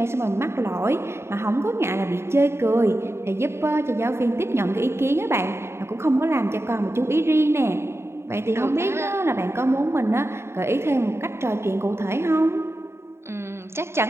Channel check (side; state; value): left; late; 0.12 ms